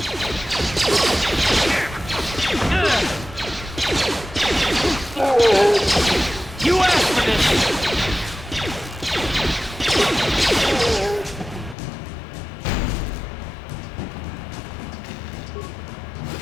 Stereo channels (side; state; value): right; drops out; at 11.8 s